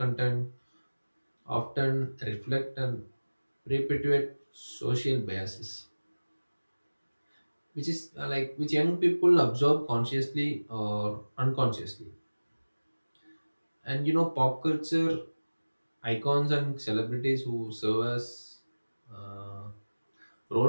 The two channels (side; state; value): both; inverted; correlation -1.00